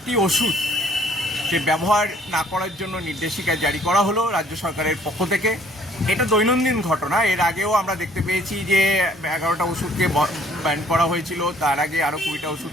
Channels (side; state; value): both; normal; correlation 0.60